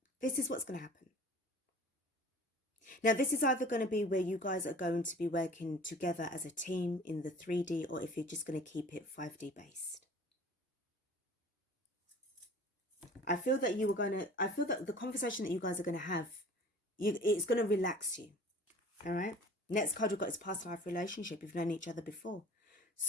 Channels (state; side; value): normal; both; correlation 0.45